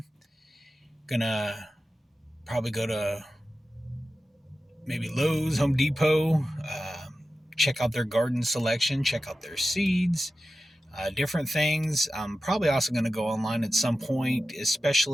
Gonna probably go to maybe Lowe's, Home Depot, check out their garden selection, check out their seeds, different things. I'm probably also going to go online at some point,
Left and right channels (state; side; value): normal; both; correlation 0.93